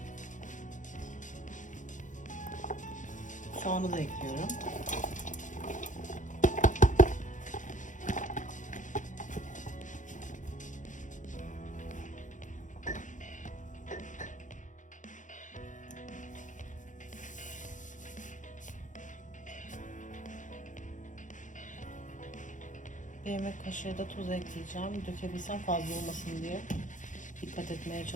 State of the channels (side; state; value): right; late; 0.37 ms